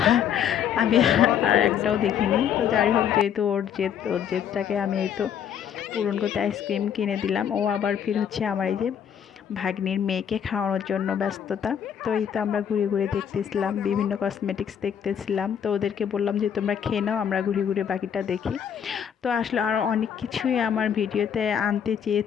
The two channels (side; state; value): right; quieter; 8.6 dB